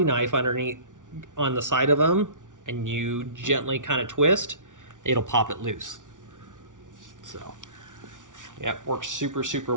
knife underneath on the side of them and you gently kind of twist, it'll pop it loose. So, yeah, it works super, super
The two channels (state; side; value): late; left; 0.87 ms